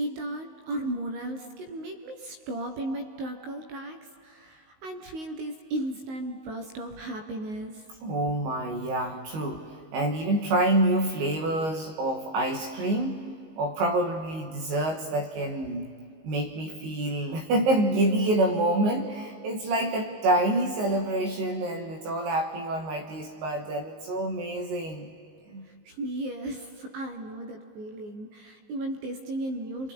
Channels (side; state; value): left; late; 19 ms